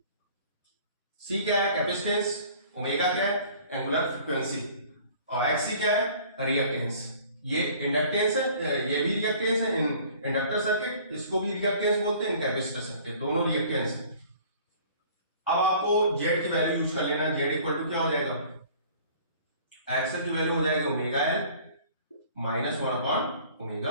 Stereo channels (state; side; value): inverted; both; correlation -0.51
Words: सी क्या है, कैपेसिटेंस। ओमेगा क्या है, एंगुलर फ्रीक्वेंसी, और एक्सी क्या है, रिएक्टेंस। ये इंडक्टेंस है, ये भी रिएक्टेंस है इन इंडक्टर सर्किट, इसको भी रिएक्टेंस बोलते हैं, कैपेसिटर सर्किट, दोनों रिएक्टेंस है। अब आपको Z की वैल्यू यूज कर लेना, Z इक्वल टू क्या हो जाएगा, एक्सल की वैल्यू हो जाएगा omega L minus 1 upon